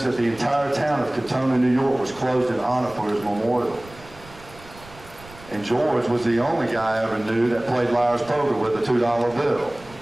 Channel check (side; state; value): right; noise; rumble, 21 dB below the sound